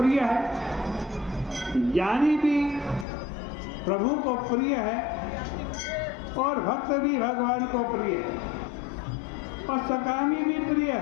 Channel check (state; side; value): drops out; right; at 3.1 s